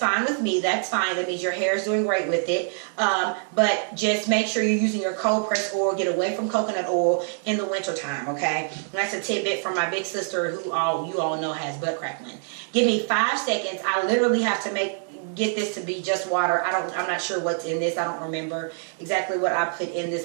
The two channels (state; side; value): silent; left; 62 dB below the other